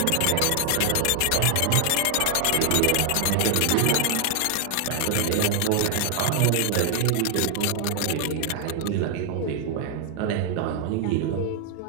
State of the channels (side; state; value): both; different; correlation 0.00